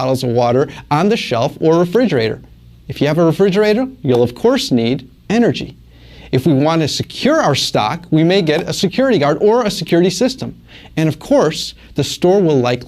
of water on the shelf or refrigerator. If you have a refrigerator, you'll of course need energy. If we want to secure our stock, we may get a security guard or a security system. And of course, the store will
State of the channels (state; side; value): identical; both; correlation 1.00